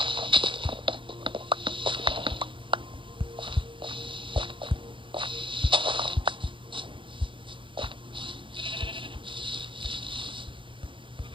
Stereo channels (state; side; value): late; left; 0.24 ms